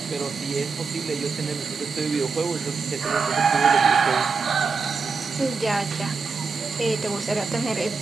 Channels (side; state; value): left; quieter; 4.8 dB